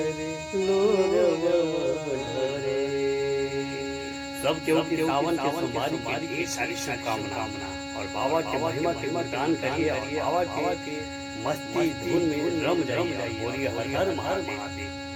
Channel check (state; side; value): identical; both; correlation 1.00